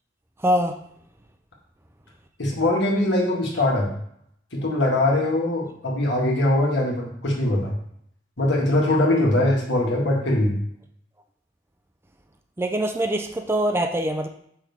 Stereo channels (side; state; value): both; normal; correlation 0.54